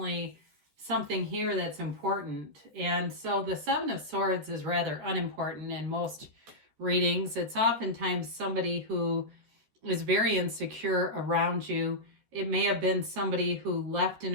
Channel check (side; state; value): left; late; 13 ms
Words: something here that's important. And so the 7 of Swords is rather unimportant in most readings. It's oftentimes somebody who is very insecure around you. It may have been somebody who left in